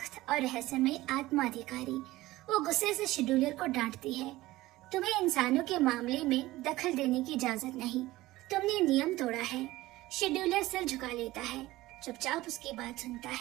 और रहस्यमय आत्मा अधिकारी। वो गुस्से से शेड्यूलर को डांटती है, तुम्हें इंसानों के मामले में दखल देने की इजाजत नहीं, तुमने नियम तोड़ा है। शेड्यूलर सिर झुका लेता है, चुपचाप उसकी बात सुनता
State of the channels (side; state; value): left; quieter; 17.8 dB